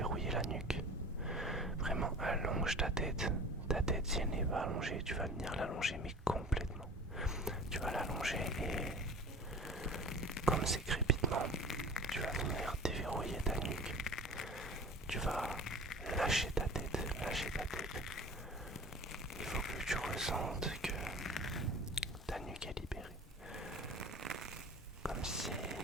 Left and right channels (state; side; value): normal; both; correlation 0.40